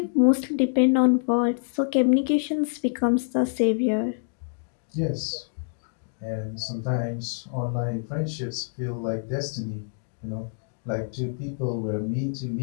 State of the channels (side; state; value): right; silent; digital silence